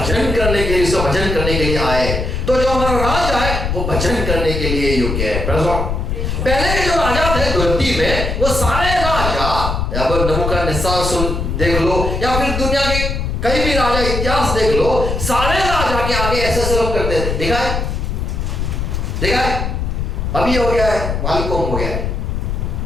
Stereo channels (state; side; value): noise; left; rumble, 2 dB below the sound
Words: करने के लिए, उसका भजन करने के लिए आए। तो जो हमारा राजा है वो भजन करने के लिए योग्य है। पहले के जो राजा थे धरती में, वो सारे राजा, अब नबूकदनेस्सर सुन देख लो, या फिर दुनिया के कई भी राजा इतिहास देख लो, सारे राजा के आगे ऐसे ऐसे लोग करते थे। देखा है? अभी हो गया है वालकोम हो गया है,